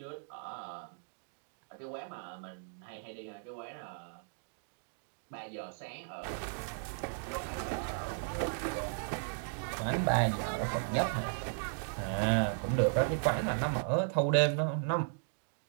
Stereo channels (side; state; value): left; silent; digital silence